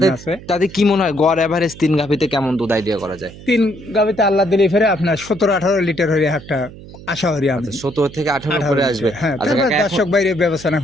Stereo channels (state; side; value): noise; right; hum, 17 dB below the sound